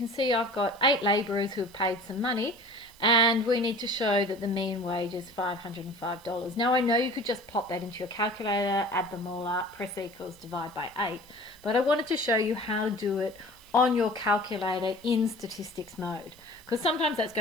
see I've got 8 labourers who have paid some money, and we need to show that the mean wage is $505. Now I know you could just plop that into your calculator, add them all up, press equals, divide by 8, but I wanted to show you how to do it on your calculator in statistics mode, because sometimes that's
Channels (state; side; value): noise; right; hiss, 25 dB below the sound